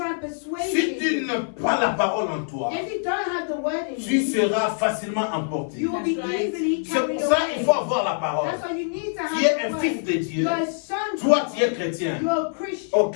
and persuade Si tu you. n'as pas la parole en toi, If you don't have the word in tu you, seras facilement emporté. you will be easily C'est carried pour ça away. qu'il faut avoir la parole. That's why you need to Tu es have un the fils word. de Dieu. You're a son. Toi, tu es chrétien. You're a Christian. Oh,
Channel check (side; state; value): right; silent; 62 dB below the other